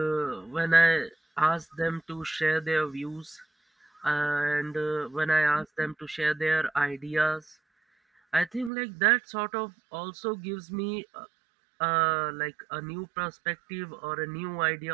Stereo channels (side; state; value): left; drops out; at 8.7 s